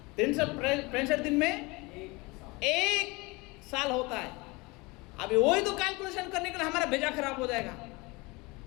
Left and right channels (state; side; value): quieter; right; 25.0 dB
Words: 365 दिन में एक साल होता है। अभी वही तो कैलकुलेशन करने के लिए हमारा भेजा खराब हो जाएगा